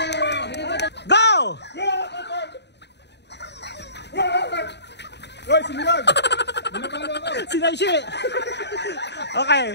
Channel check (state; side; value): late; right; 0.50 ms